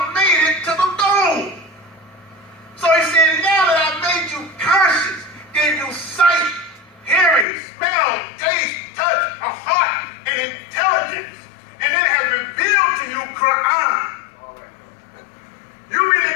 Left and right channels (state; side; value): drops out; right; at 7.5 s